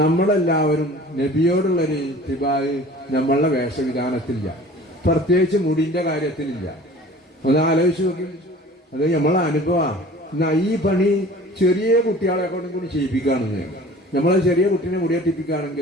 നബിയോടുള്ളൊരു തിബായ് നമ്മളുടെ വേഷവിധാനത്തിലില്ല, പ്രത്യേകിച്ച് മുടിന്റെ കാര്യത്തിലില്ല. ഒന്ന് ആലോചിച്ച് നോക്കി. അത് നമ്മളെ അനുഭവമാണ്. എന്നാ ഈ പണി ചെറിയ കുട്ടികളെ കൊണ്ടും കൂടി ചെയ്യിപ്പിക്കുകയാണെന്ന്. നമ്മളെ ചെറിയ കുട്ടീനെ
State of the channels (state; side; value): normal; both; correlation 0.45